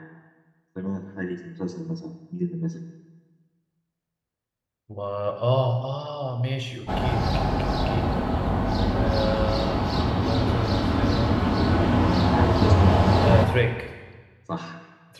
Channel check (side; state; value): both; identical; correlation 1.00